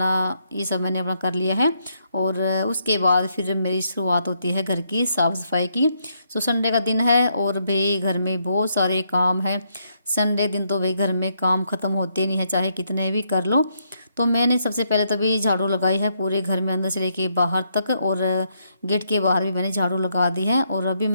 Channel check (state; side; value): inverted; both; correlation -0.76